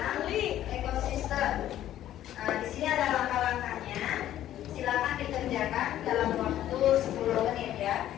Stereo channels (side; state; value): right; quieter; 12.4 dB